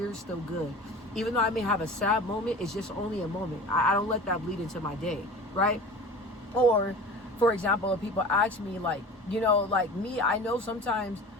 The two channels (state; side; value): normal; both; correlation 0.37